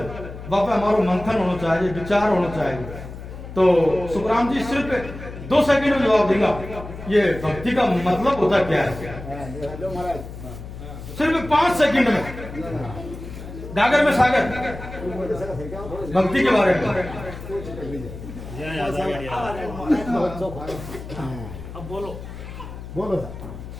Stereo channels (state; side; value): noise; left; hum, 12 dB below the sound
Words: बापा हमारा मंथन होना चाहिए, विचार होना चाहिए। तो सुखराम जी सिर्फ 2 सेकंड में जवाब देगा ये भक्ति का मतलब होता क्या है, सिर्फ 5 सेकंड में गागर में सागर भक्ति के बारे में। अब बोलो बोलो